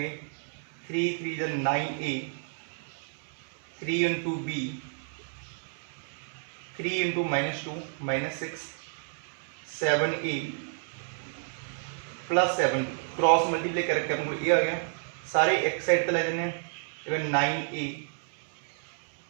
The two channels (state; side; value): silent; left; 58 dB below the other